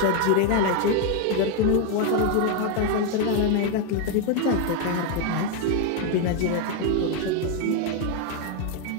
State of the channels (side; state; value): both; different; correlation 0.01